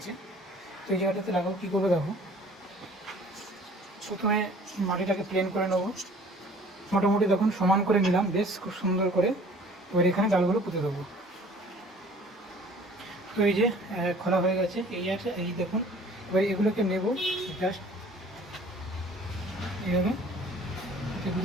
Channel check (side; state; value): both; normal; correlation 0.51